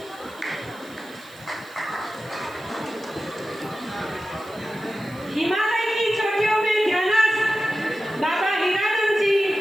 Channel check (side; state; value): right; noise; hiss, 24 dB below the sound